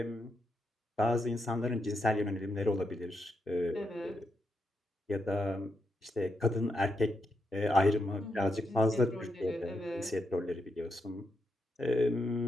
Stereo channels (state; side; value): normal; both; correlation 0.82